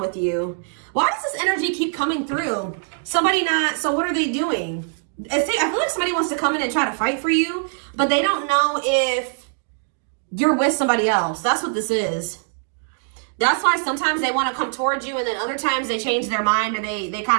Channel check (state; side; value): silent; left; 62 dB below the other